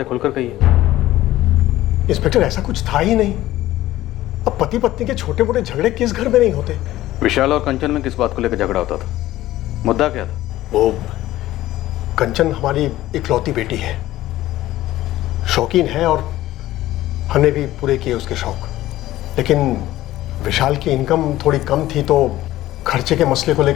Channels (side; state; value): right; quieter; 15.3 dB